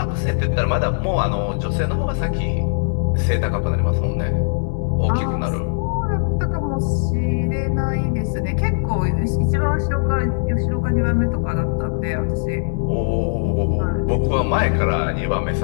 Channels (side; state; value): right; silent; 66 dB below the other